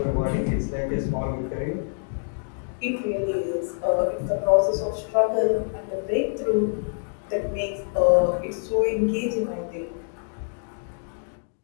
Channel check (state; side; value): silent; right; digital silence